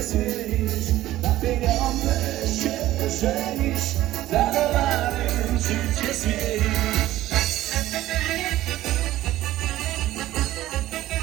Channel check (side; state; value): left; quieter; 15.1 dB